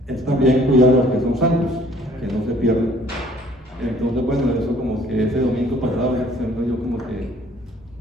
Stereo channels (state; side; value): normal; both; correlation 0.58